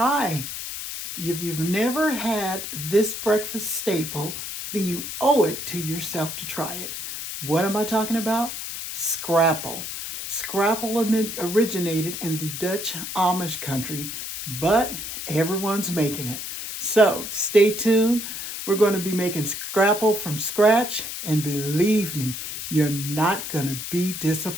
if you've never had this breakfast staple, then you owe it to yourself to try it. What am I talking about? Scrapple. Scrapple originated in the Dutch Amish country, but everyone's making it. So stay tuned. We're going to be making Scrapple from scratch, and believe me, you're not going to be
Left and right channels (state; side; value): noise; left; hiss, 7 dB below the sound